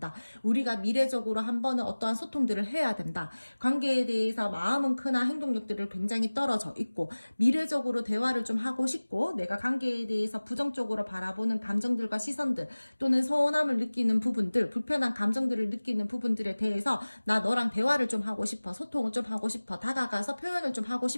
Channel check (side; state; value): both; inverted; correlation -1.00